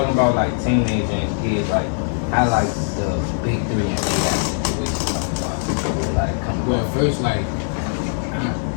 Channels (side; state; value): right; silent; digital silence